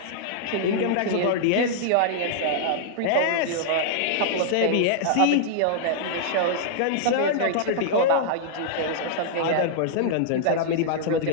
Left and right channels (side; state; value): both; different; correlation -0.01